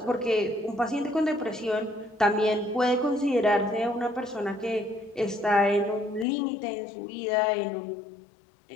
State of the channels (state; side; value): drops out; right; at 6.2 s